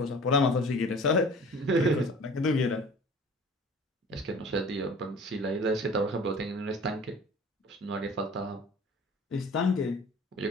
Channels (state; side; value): normal; both; correlation 0.45